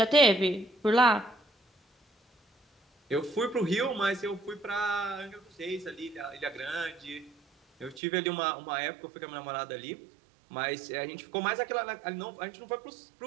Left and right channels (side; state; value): left; drops out; at 8.0 s